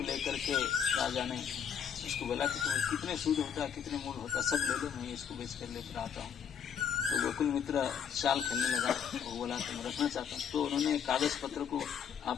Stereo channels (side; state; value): right; quieter; 7.9 dB